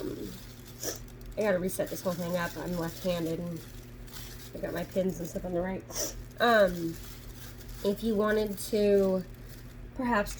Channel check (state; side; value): identical; both; correlation 1.00